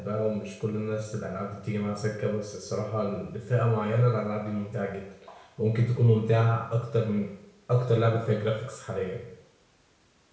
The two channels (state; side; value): identical; both; correlation 1.00